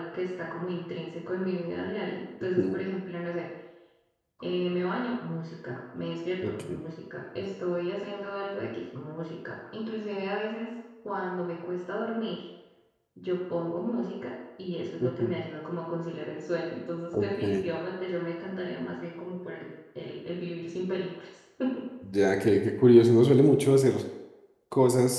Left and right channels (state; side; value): identical; both; correlation 1.00